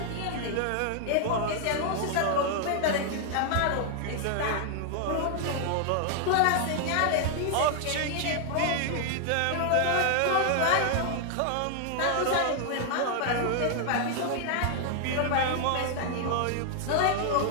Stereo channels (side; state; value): both; different; correlation 0.00